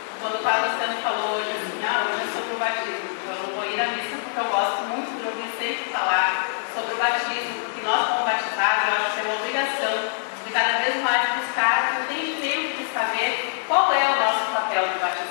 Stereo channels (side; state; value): right; silent; digital silence